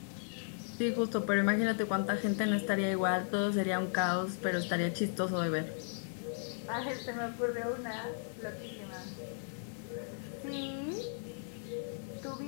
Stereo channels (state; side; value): silent; right; digital silence